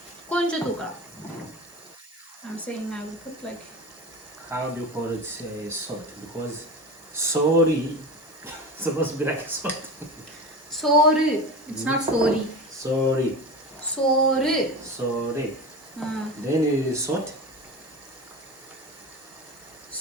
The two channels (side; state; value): both; normal; correlation 0.28